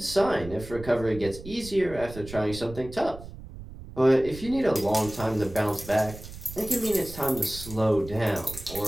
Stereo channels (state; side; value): noise; right; rumble, 14 dB below the sound